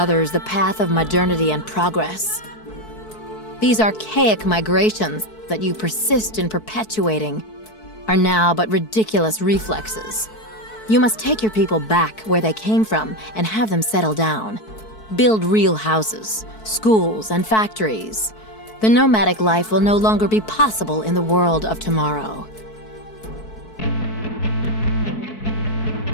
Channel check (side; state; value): right; late; 4.6 ms